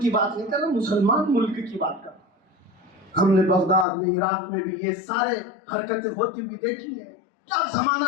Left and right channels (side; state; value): right; drops out; at 3.9 s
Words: کی بات نہیں کر رہا، مسلمان ملک کی بات کر رہا۔ ہم نے بغداد میں، عراق میں بھی یہ سارے حرکتیں ہوتی ہوئی دیکھی ہیں۔ کیا